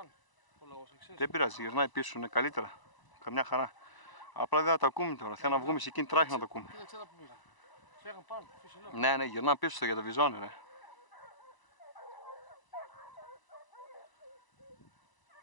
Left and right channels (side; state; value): right; late; 1.0 ms